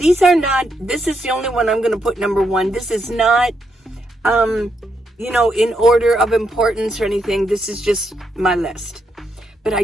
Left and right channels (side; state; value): both; normal; correlation 0.79